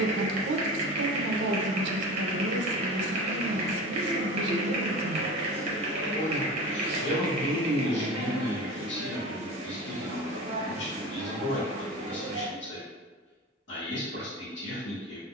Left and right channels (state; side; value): normal; both; correlation 0.32